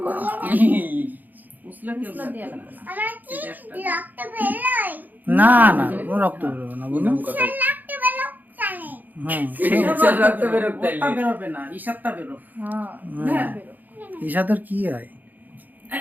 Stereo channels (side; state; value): left; late; 0.084 ms